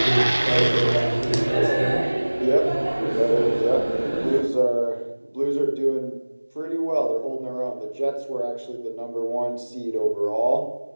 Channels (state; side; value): inverted; both; correlation -1.00